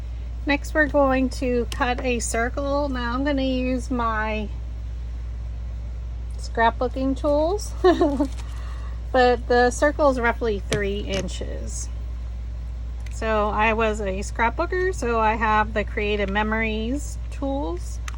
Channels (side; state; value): both; identical; correlation 1.00